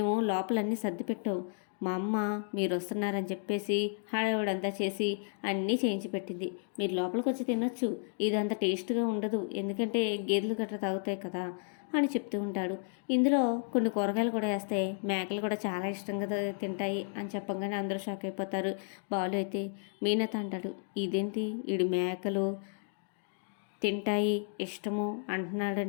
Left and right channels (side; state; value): right; silent; 56 dB below the other